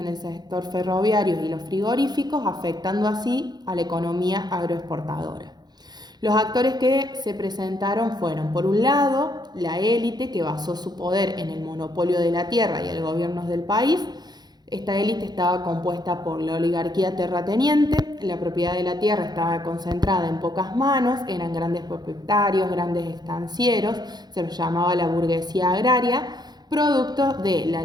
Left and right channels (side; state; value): left; late; 0.20 ms